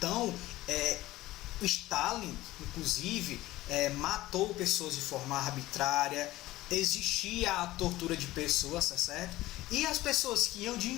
o Stalin, inclusive, matou pessoas de forma arbitrária, existia a tortura de pessoas, tá certo? E as pessoas que iam de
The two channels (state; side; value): quieter; right; 17.0 dB